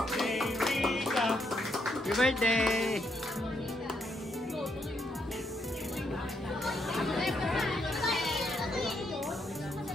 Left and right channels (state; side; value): normal; both; correlation 0.76